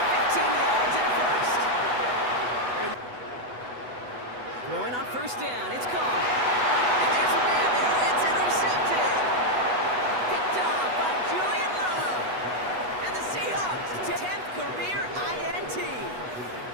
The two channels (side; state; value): left; late; 8.1 ms